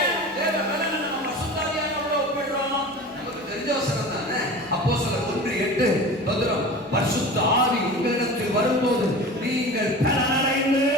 தேவ பலனை நம்ம பரிசுத்த ஆவியானவரோட ஒப்பிடுறோம்? நமக்கு தெரிஞ்ச வசனம் தானே. அப்போஸ்தலர் 1:8 பரிசுத்த ஆவி உங்களிடத்தில் வரும்போது நீங்கள் பலனடைந்து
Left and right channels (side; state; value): both; normal; correlation 0.35